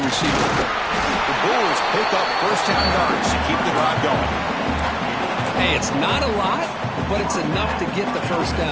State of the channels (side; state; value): both; identical; correlation 1.00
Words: receiver. The Bulls pick up 1st down yards to keep the drive going. Hey, it's not a lot, but it's enough to get the 1st